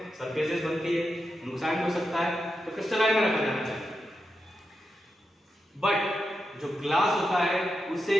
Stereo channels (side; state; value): both; normal; correlation 0.87